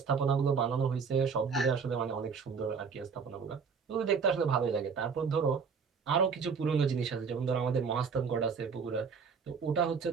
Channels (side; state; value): left; quieter; 5.8 dB